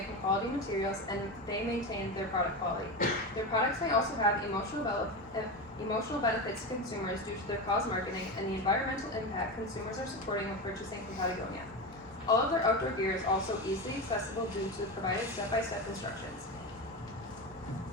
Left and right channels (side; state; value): both; normal; correlation 0.20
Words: from quality materials and they maintain their product quality. Their products may also have emotional benefits to consumers due to their cause marketing and the environmental impact consumers are supporting when purchasing from Patagonia. All of their outdoor gear is also easily accessible due to the provided step-by-step instructions.